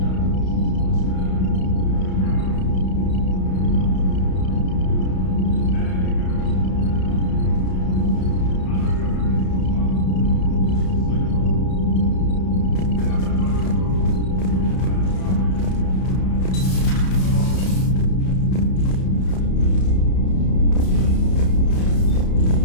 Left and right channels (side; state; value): right; late; 32 ms